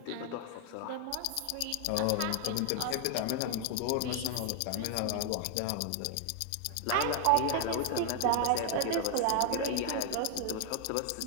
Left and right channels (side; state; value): both; different; correlation 0.00